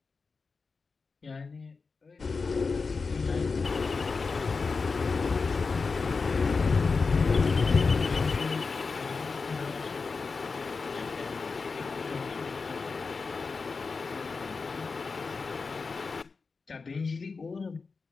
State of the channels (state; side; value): quieter; right; 4.5 dB